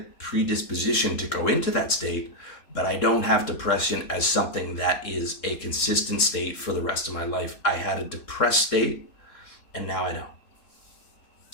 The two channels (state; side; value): late; right; 3.7 ms